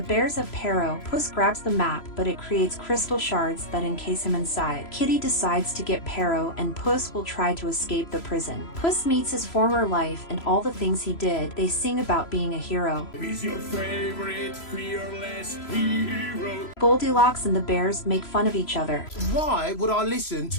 bears have Pero. Puss grabs the map, but it creates crystal shards that encase him inside. Kitty decides to get Pero, and Puss will try to escape the prison. Puss meets his former life and all the things he did. They sing about being a hero. He's your favorite fearless hero. Goldilocks and the bears make fun of each other, Why would I listen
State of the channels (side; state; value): right; late; 3.0 ms